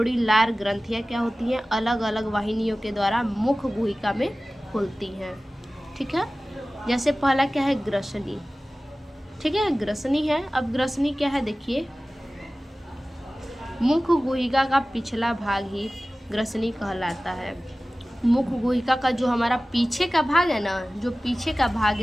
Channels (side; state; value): both; normal; correlation 0.97